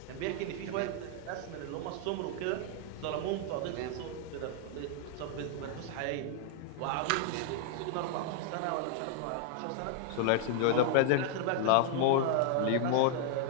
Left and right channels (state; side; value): different; both; correlation 0.00